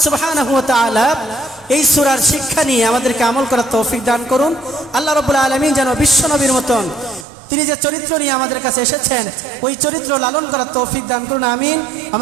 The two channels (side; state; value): left; drops out; at 7.2 s